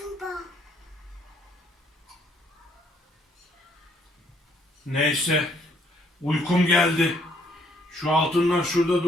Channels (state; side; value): normal; both; correlation 0.68